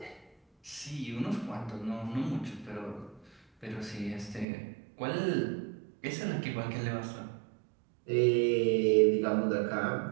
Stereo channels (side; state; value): left; drops out; at 4.5 s